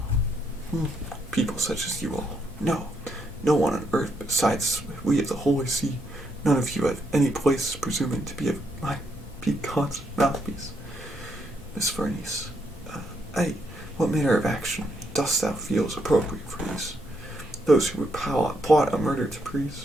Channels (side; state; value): both; normal; correlation 0.76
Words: People such as you all. No one on earth besides we of the Holy See. None of you have any place presuming to be God's mouthpiece. Miss Farnese, what manner of action dost thou feel is appropriate for these? Those who would plot a murder to